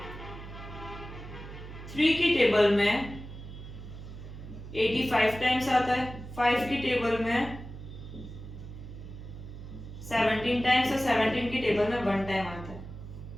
3 की टेबल में 85 टाइम्स आता है, 5 की टेबल में 17 टाइम्स और 17 की टेबल में 1 टाइम आता है।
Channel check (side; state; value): right; noise; hum, 12 dB below the sound